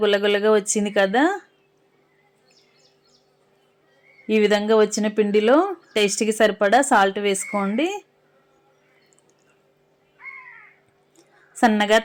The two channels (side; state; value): both; identical; correlation 1.00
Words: గుల్లగుల్లగా వచ్చింది కదా. ఈ విధంగా వచ్చిన పిండిలో టేస్ట్కి సరిపడా సాల్ట్ వేసుకోండి. సన్నగా